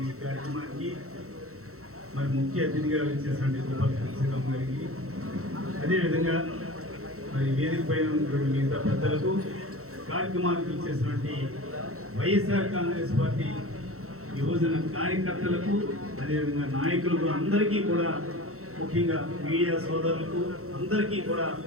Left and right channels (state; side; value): late; left; 0.63 ms